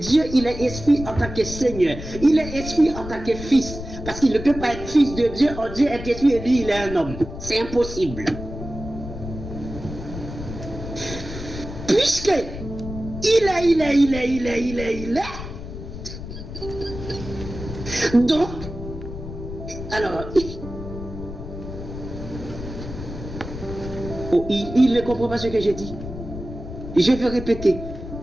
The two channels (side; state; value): left; noise; rumble, 10 dB below the sound